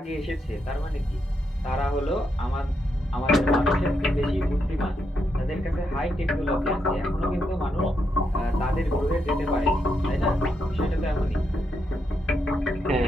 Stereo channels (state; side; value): normal; both; correlation 0.81